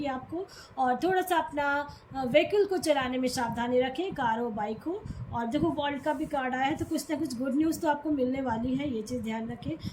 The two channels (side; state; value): both; identical; correlation 1.00